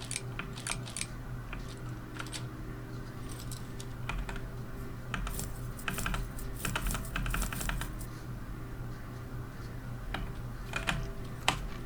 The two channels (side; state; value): both; identical; correlation 1.00